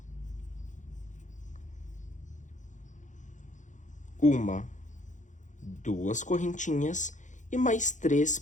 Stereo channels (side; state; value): right; late; 0.36 ms